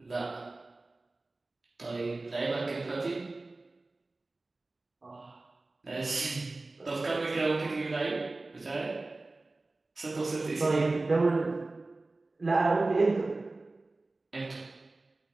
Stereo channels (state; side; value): quieter; left; 3.2 dB